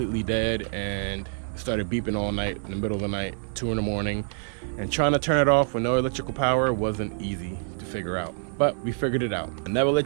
dead and started beeping all night in the middle of the night, 2 in the morning. And trying to turn it off with no electrical power wasn't easy to figure out, but we figured it out. And never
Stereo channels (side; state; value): left; silent; 61 dB below the other